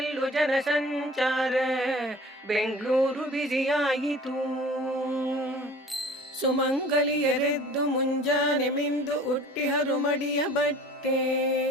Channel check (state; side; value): normal; both; correlation 0.45